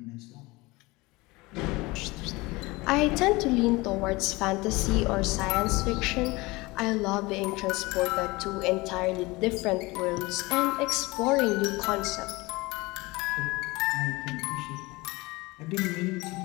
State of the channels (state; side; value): quieter; right; 22.7 dB